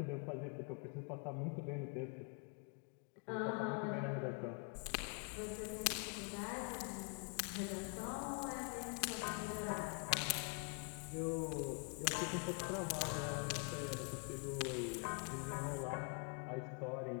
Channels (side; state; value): right; quieter; 36.9 dB